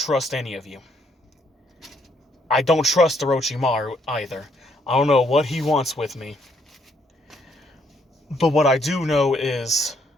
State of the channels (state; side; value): normal; both; correlation 0.70